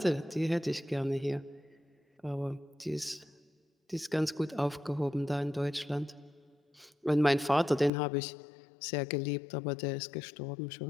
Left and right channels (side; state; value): right; drops out; at 7.9 s